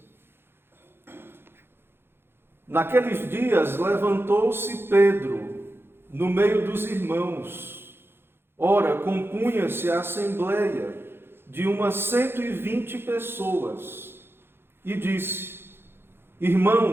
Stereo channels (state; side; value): late; left; 0.11 ms